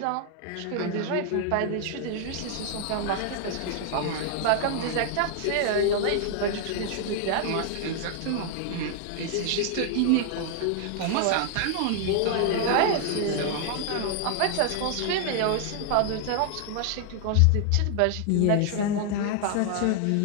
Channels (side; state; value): both; different; correlation 0.00